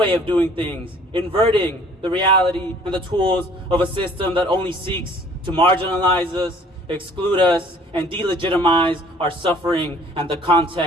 of doing things, inverting the reality and the tools of a system that only seeks to marginalize us, exclude us, and delegitimize our suffering and the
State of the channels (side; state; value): both; normal; correlation 0.54